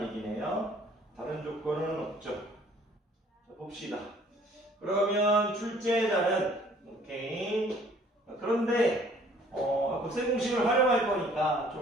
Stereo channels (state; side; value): normal; both; correlation 0.57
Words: 얘기네요. 다른 조건은 없죠. 자, 봅시다. 그러면 출제자는 오케이. 그런데 곱셈 공식을 활용할 거니까